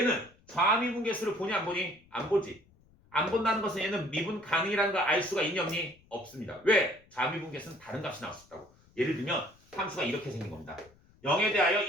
좌미분계수를 보니 안 보니? 안 보지. 안 본다는 것은 얘는 미분 가능이라는 걸 알 수가 있니 없니? 없습니다. 왜? 좌미분계수는 다른 값이 나올 수 있다고. 예를 들면 함수가 이렇게 생긴 겁니다. 0에 대하여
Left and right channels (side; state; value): left; noise; rumble, 30 dB below the sound